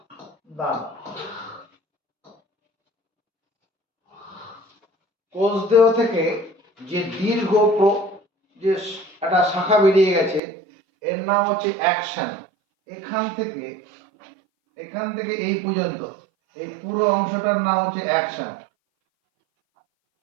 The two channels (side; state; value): left; drops out; at 10.4 s